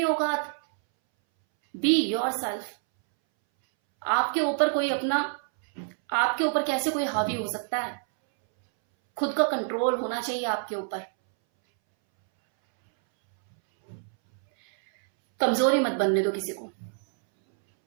औकात, बी योरसेल्फ। आपके ऊपर कोई अपना, आपके ऊपर कैसे कोई हावी हो सकता है? खुद का कंट्रोल होना चाहिए आपके ऊपर। कमजोरी मत बनने दो किसी को,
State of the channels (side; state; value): left; silent; 60 dB below the other